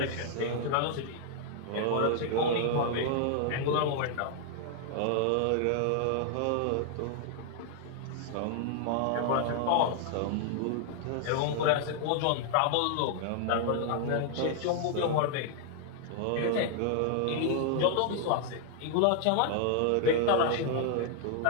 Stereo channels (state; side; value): different; both; correlation 0.00